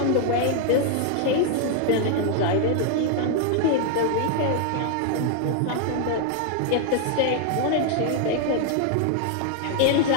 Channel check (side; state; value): both; different; correlation 0.00